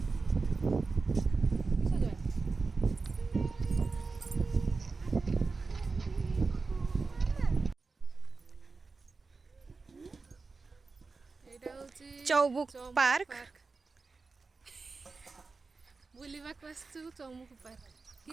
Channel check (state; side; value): quieter; left; 4.2 dB